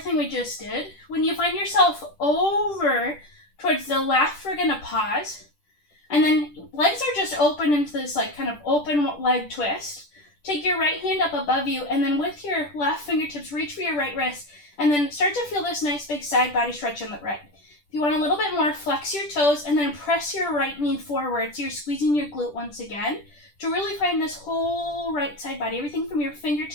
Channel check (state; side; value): late; right; 10 ms